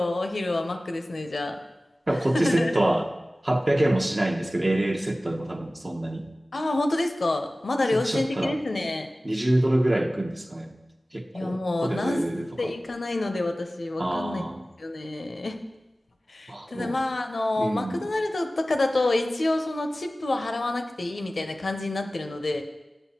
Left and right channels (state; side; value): normal; both; correlation 0.97